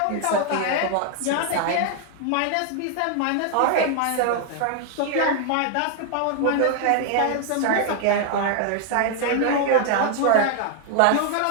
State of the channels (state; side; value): different; both; correlation 0.00